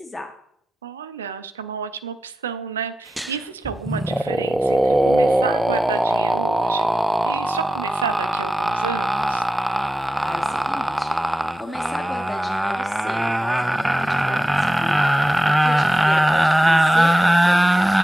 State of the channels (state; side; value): normal; both; correlation 0.92